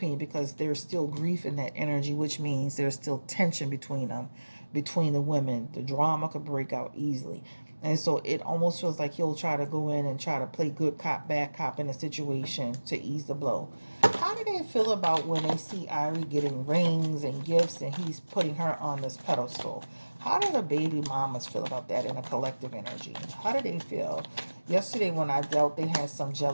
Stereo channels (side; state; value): both; inverted; correlation -1.00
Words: because there's still grief in that energy, which means there's still tension between them, between the women. The drama could break out easily. And so it almost feels like he'll try to go in and try to play good cop, bad cop in a situation to ease the blow. How do they feel about when they see Ari getting rings and gifts and he's putting her on this pedestal? How do the baby mamas feel about that in a collective energy? How do they feel? Yesterday when I dealt, they had some